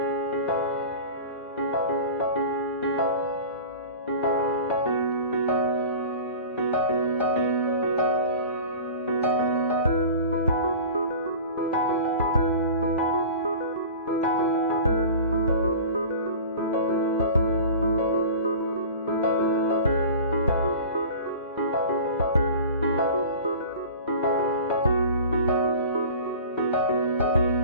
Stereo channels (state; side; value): inverted; both; correlation -0.38